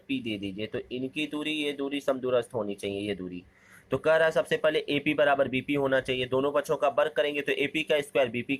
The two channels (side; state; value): both; identical; correlation 1.00